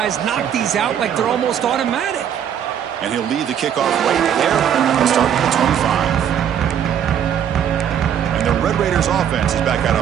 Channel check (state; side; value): quieter; left; 9.1 dB